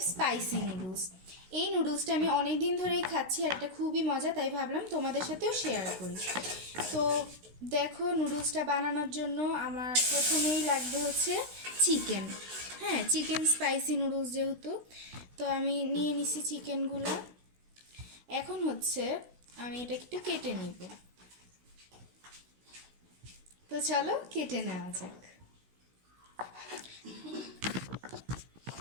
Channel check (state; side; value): late; left; 16 ms